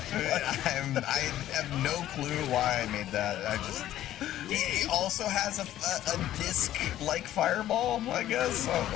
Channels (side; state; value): right; quieter; 13.0 dB